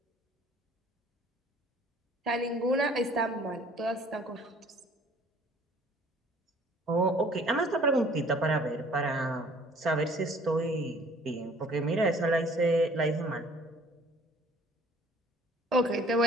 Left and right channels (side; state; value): both; normal; correlation 0.55